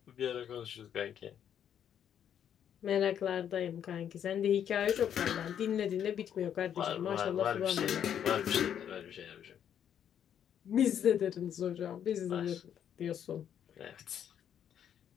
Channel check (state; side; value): quieter; right; 9.2 dB